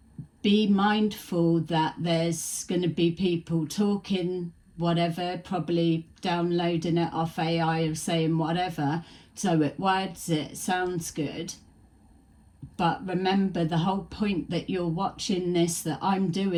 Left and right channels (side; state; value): both; identical; correlation 1.00